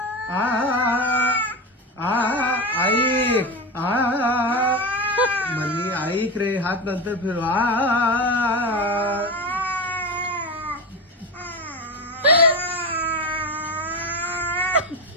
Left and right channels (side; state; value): both; normal; correlation 0.20